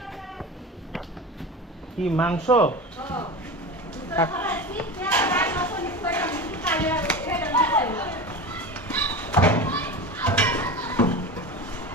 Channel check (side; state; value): both; normal; correlation 0.28